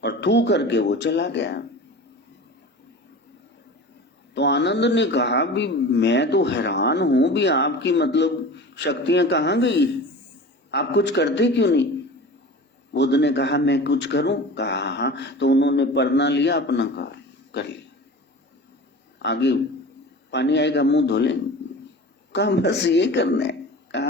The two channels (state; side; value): normal; both; correlation 0.36